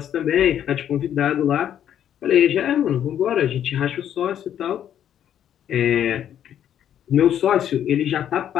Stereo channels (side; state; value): right; quieter; 10.1 dB